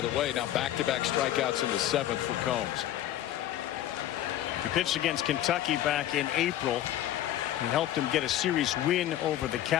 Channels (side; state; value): right; quieter; 12.6 dB